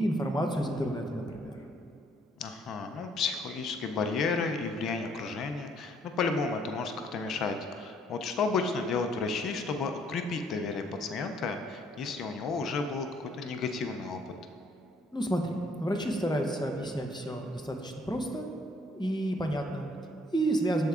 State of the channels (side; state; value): both; normal; correlation 0.65